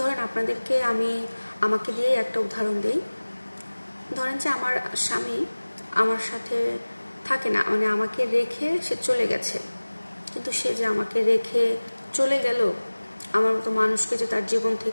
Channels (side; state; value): both; inverted; correlation -1.00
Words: আপনাদেরকে আমাকে দিয়ে একটা উদাহরণ দিই। ধরেন যে আমার স্বামী আমার সাথে থাকে না, মানে আমাকে রেখে সে চলে গেছে, কিন্তু সে যে আমাকে রেখে চলে গেল, আমার মতো মানুষকে যে তার জীবন